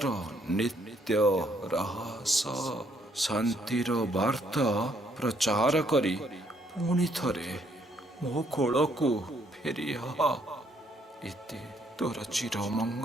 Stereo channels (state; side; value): normal; both; correlation 0.69